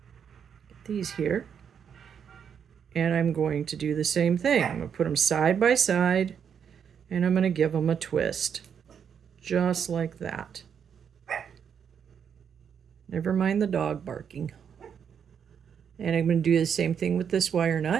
get these here. And I'm going to do the same thing. I'm going to put them side by side, and I'm going to give them a twist. Just like that. Never mind the dog barking. And I'm going to do the same thing with this wire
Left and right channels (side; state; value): left; quieter; 7.6 dB